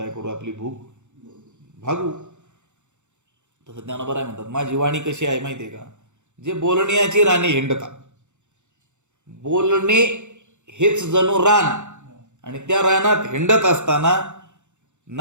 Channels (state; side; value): late; left; 0.84 ms